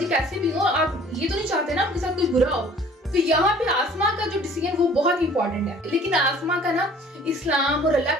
कैसे भी हो, आप ये तो नहीं चाहते ना आपके साथ कुछ बुरा हो। तो यहाँ पे आसमा का जो डिसीजन वो बहुत इंपॉर्टेंट है, लेकिन आसमा का ना इस्लाम और अल्लाह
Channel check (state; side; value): normal; both; correlation 0.51